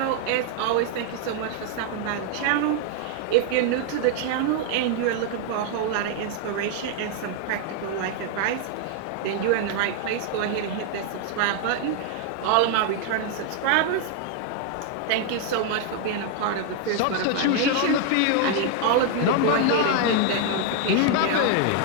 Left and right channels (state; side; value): different; both; correlation 0.00